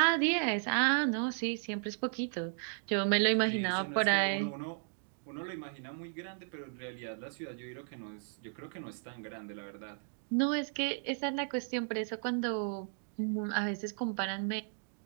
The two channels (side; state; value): left; silent; digital silence